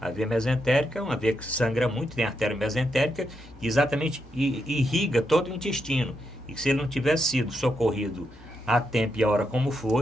veia mesentérica é uma veia que sangra muito, tem a artéria mesentérica, que exatamente irriga todo o intestino. E se ele não tivesse sido socorrido a tempo e a hora como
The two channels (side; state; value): both; normal; correlation 0.83